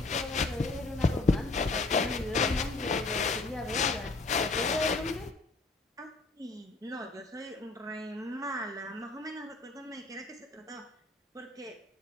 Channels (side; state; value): right; quieter; 3.3 dB